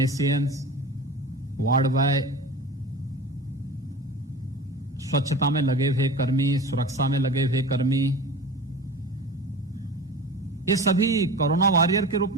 ward boy, स्वच्छता में लगे हुए कर्मी, सुरक्षा में लगे हुए कर्मी, ये सभी कोरोना वॉरियर के रूप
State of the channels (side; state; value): both; normal; correlation 0.34